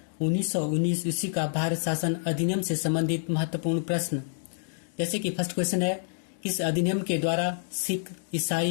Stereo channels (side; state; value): right; silent; digital silence